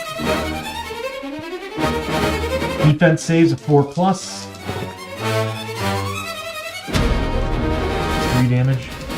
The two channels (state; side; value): identical; both; correlation 1.00